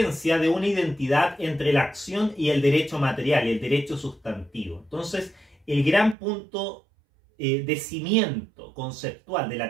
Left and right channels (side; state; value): left; drops out; at 6.2 s